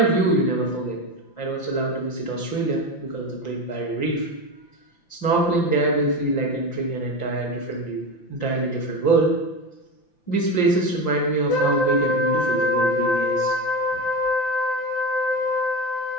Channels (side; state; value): right; late; 5.8 ms